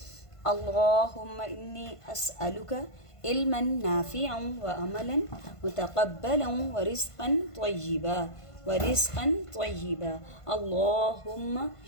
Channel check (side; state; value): right; late; 1.5 ms